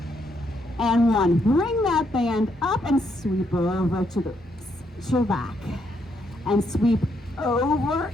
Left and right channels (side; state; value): both; normal; correlation 0.75